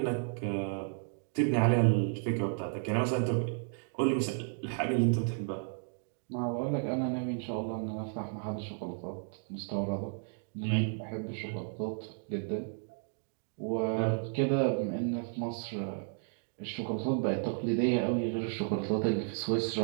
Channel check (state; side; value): silent; left; 56 dB below the other